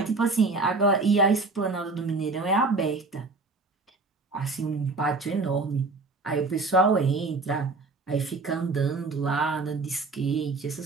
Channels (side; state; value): left; quieter; 3.7 dB